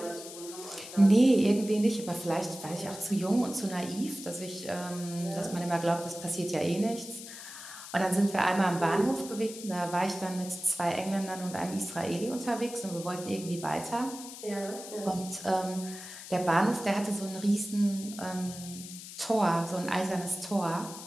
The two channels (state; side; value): noise; left; hiss, 12 dB below the sound